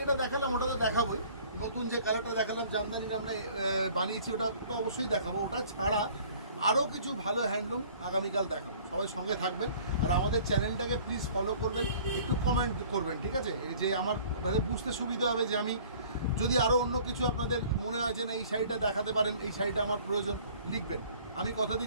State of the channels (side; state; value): both; inverted; correlation -0.51